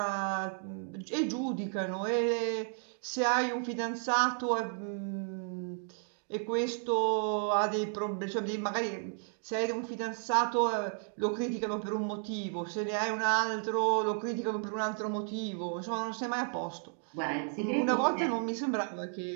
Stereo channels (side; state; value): left; silent; 56 dB below the other